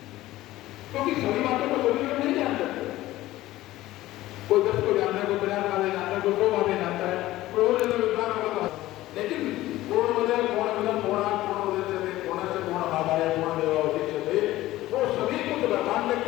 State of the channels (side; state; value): right; quieter; 16.2 dB